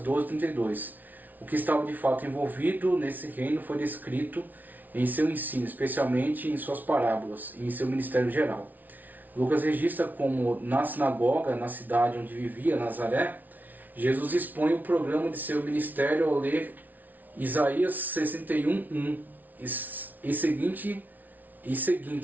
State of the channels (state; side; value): late; left; 0.080 ms